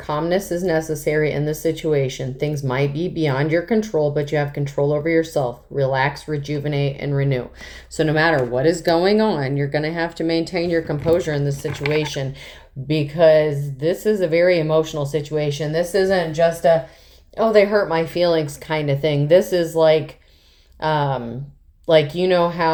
is necessary in this situation. Things might be beyond your control, but you have control over yourself. Relax, rejuvenate, and renew. So no matter what is going on, you're going to have to maintain your composure in this situation, because this is a very emotional situation. This isn't just a, oh, they hurt my feelings kind of thing. This is like, you know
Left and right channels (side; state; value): both; identical; correlation 1.00